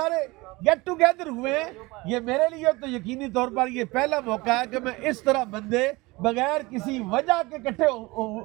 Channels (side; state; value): left; quieter; 22.8 dB